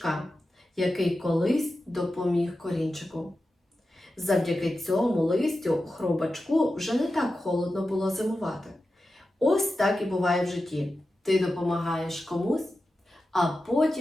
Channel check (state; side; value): normal; both; correlation 0.92